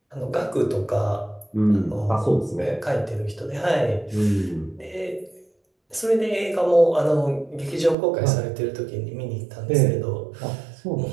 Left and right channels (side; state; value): left; drops out; at 8.0 s